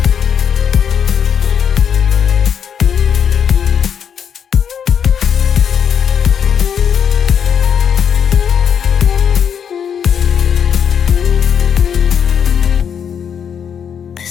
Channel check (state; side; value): quieter; right; 7.8 dB